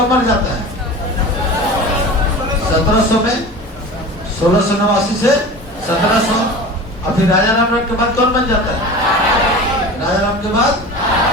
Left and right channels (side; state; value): both; normal; correlation 0.35